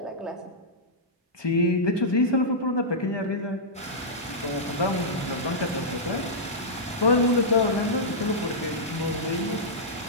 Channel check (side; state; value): both; normal; correlation -0.11